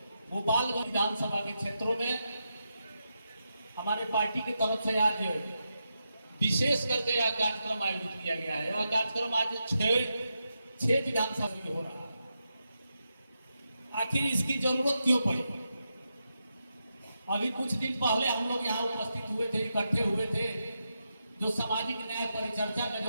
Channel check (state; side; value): inverted; both; correlation -0.86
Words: गोपालगंज विधानसभा के क्षेत्रों में हमारे पार्टी की तरफ से आज विशेष करके यह कार्यक्रम आयोजित किया गया है। यह कार्यक्रम आज छह विधानसभा में हो रहा है। आखिर इसकी जरूरत क्यों पड़ी? अभी कुछ दिन पहले हम लोग यहाँ उपस्थित हुए थे, इकट्ठे हुए थे। जो सामाजिक न्याय परिचर्चा का